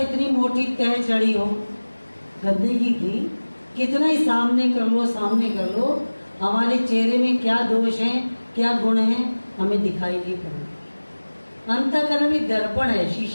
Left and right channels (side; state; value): both; inverted; correlation -1.00